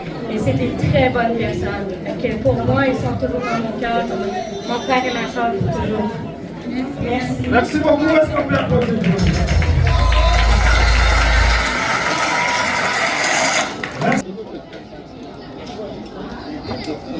Et c'est des très bonnes personnes. Que pour moi, ils sont toujours dans mon cœur. Mon frère et ma soeur, toujours. Merci. Merci beaucoup. Est-ce qu'on peut applaudir? Merci.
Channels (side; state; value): both; identical; correlation 1.00